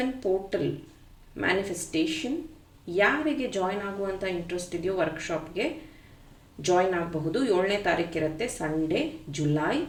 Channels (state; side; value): identical; both; correlation 1.00